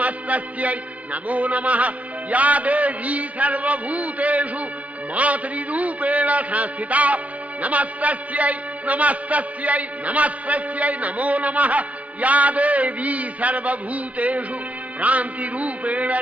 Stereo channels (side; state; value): left; late; 0.068 ms